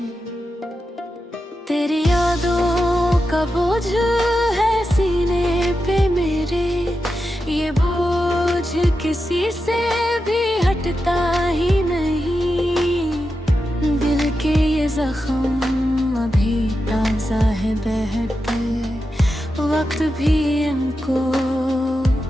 तेरी यादों का बोझ है सीने पे मेरे, ये बोझ किसी से भी हटता ही नहीं। दिल के ये जख्म अभी ताजा है बहते, वक्त भी इनको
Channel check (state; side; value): normal; both; correlation 0.89